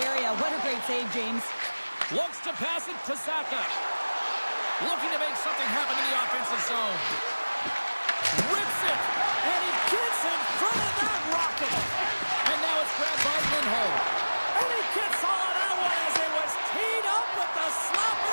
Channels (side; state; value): both; inverted; correlation -1.00